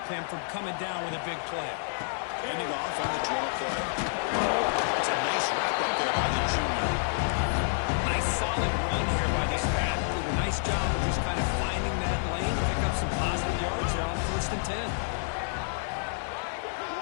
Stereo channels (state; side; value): silent; right; digital silence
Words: him from coming down with a big play. Ending off on the draw play. It's a nice wrap-up there by the junior. Nice solid run here by this back. Did a nice job of just kind of finding that lane, pick up some positive